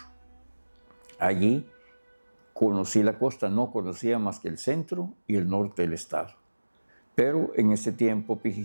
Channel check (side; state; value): both; inverted; correlation -1.00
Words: Allí conocí la costa, no conocía más que el centro y el norte del estado. Pero en ese tiempo